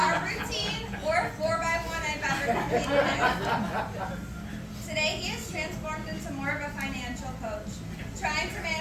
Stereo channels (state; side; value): identical; both; correlation 1.00